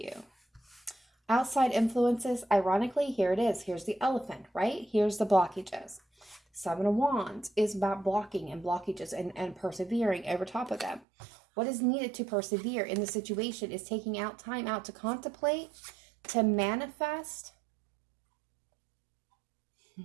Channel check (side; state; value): left; drops out; at 11.1 s